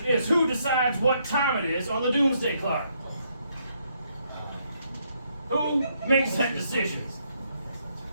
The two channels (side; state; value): both; inverted; correlation -0.74